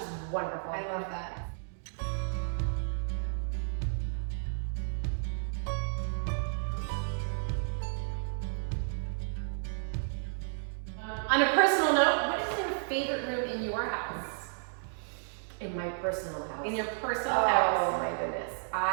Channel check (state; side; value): silent; left; digital silence